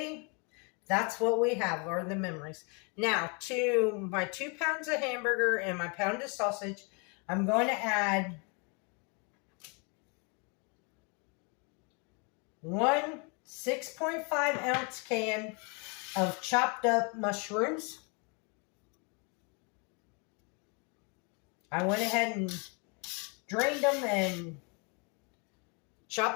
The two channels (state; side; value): quieter; right; 33.8 dB